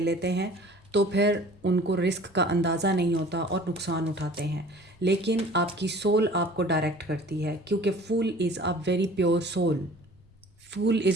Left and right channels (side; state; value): both; normal; correlation 0.47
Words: लेते हैं, तो फिर उनको रिस्क का अंदाज़ा नहीं होता और नुकसान उठाते हैं। लेकिन आपकी सोल आपको डायरेक्ट करती है, क्योंकि fool is a very pure soul. Fool